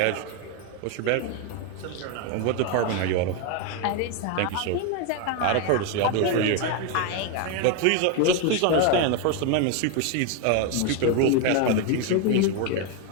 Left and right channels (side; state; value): both; different; correlation 0.01